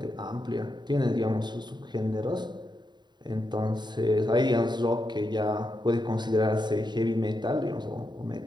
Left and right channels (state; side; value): late; left; 0.21 ms